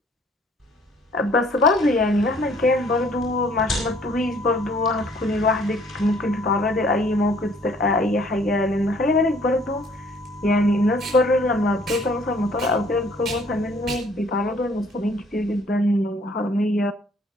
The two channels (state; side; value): normal; both; correlation 0.59